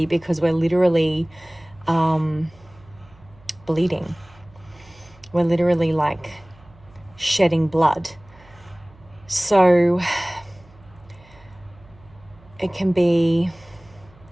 because we're literally bleeding. We're literally like shedding blood. So it can be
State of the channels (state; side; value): noise; right; hum, 26 dB below the sound